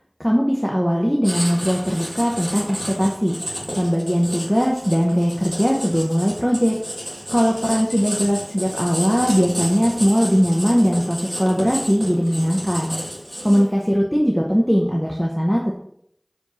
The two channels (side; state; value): both; identical; correlation 1.00